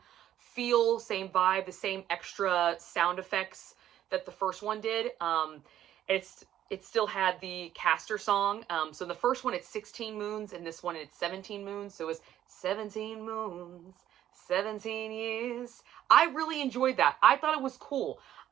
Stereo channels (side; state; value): left; quieter; 11.7 dB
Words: feel, same vibe, the same extra sound effects that the first one did. It still had the Castor song. So in the first one, it's 16 moons, and this one, it's 17 moons. So it was 17 moons, 17 years. I really enjoyed that. I thought it was cool.